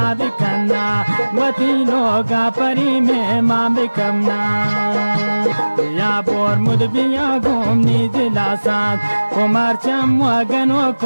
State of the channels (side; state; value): both; inverted; correlation -1.00